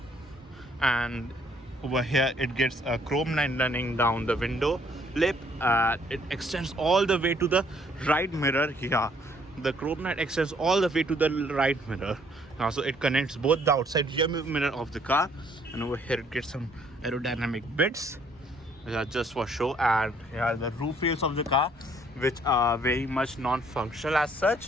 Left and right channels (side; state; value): both; normal; correlation 0.64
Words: And over here it gets a chrome line running down the window lip. It extends all the way to the right mirror here. The chrome line extends all the way to the right mirror. So it connects both the outside rear mirror of the car, and over here it gets some aerodynamic bits which are just for show. And here are the roof rails of the car, which are very much non-functional as